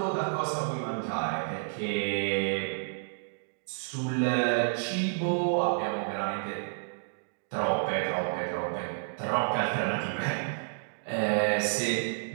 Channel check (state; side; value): silent; left; digital silence